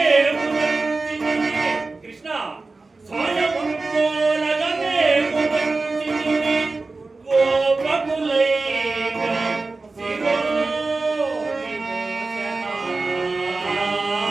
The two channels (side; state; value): left; quieter; 3.6 dB